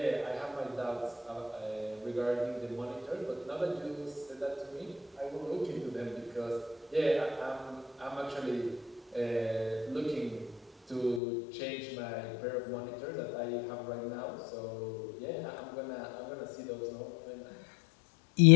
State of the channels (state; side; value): drops out; right; at 11.2 s